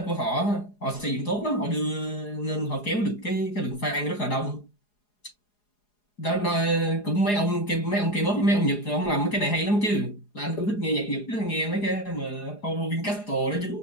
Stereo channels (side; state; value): right; late; 4.8 ms